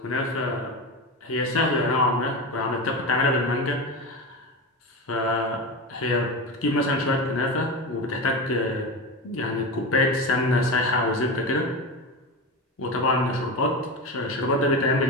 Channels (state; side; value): normal; both; correlation 0.22